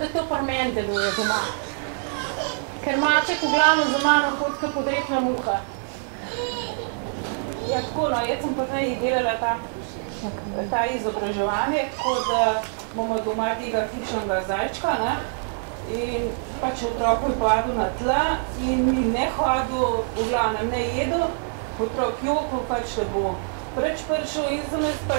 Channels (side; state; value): left; silent; 62 dB below the other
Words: to pri meni deluje doma. Ker maček v glavno za mano hodka podrepna muha. Ja, tako, no, jaz sem pa zdaj delala ta izobraževanje, tako da bomo doma tega hišnega zajčka, ne? In pač otrok je padel na tla in ne hodil, v glavnem ne jedel, otrok jokal, pač da bo preč prišel in sem jaz